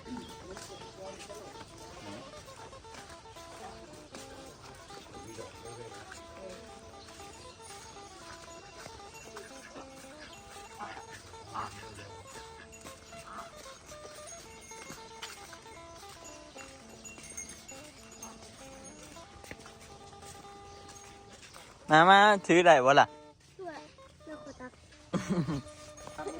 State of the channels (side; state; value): both; identical; correlation 1.00